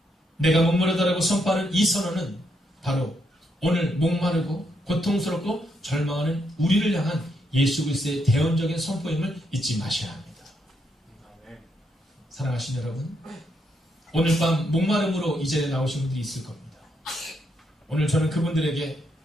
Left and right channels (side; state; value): both; normal; correlation 0.78